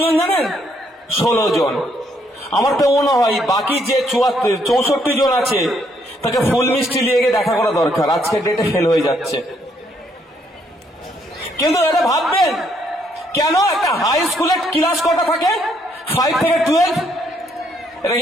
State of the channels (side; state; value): both; normal; correlation 0.71